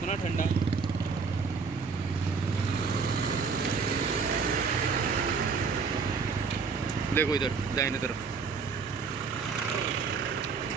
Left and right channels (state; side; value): quieter; left; 5.2 dB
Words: ठंडा. देखो इधर दाहिने तरफ